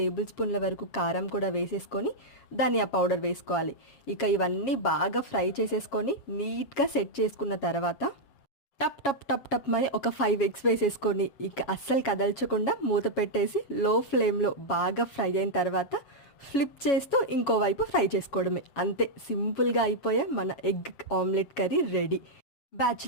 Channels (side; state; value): right; late; 7.3 ms